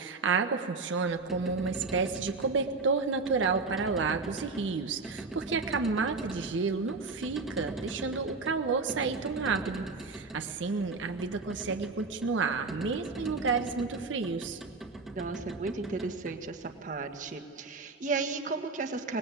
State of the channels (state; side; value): quieter; left; 4.0 dB